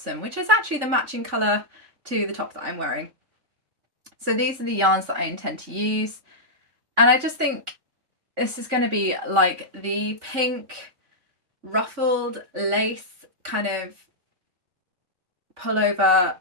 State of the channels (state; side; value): late; left; 3.5 ms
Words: which is actually the matching colour to the top that I'm wearing. So these are the yarns that I intend to use, and I just think this is going to be like the pink ruffled lace kind of pullover